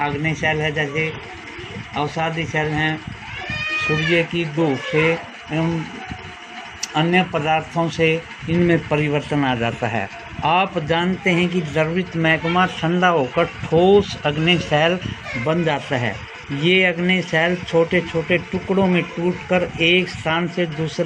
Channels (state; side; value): identical; both; correlation 1.00